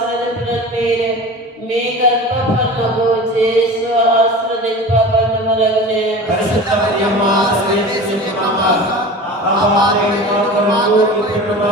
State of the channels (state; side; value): normal; both; correlation 0.34